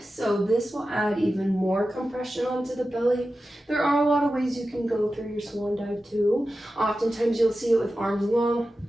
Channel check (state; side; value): normal; both; correlation 0.93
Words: So this will add even more compression onto the belly. There are a lot of ways you can go through your swan dive too. Oftentimes you'll see it with arms